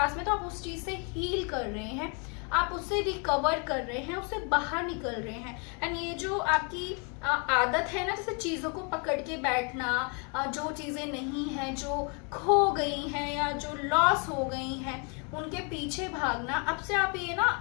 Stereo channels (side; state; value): right; quieter; 35.9 dB